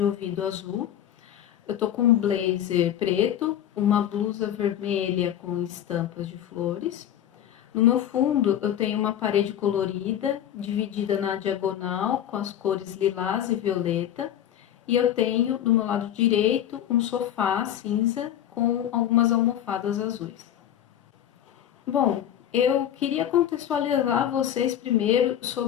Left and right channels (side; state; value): right; quieter; 10.8 dB